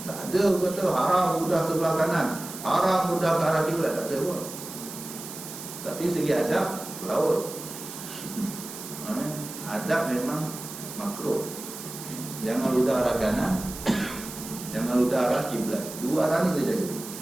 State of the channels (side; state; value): right; noise; hiss, 11 dB below the sound